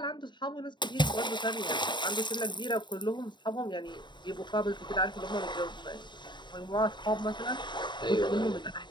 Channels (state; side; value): late; right; 0.22 ms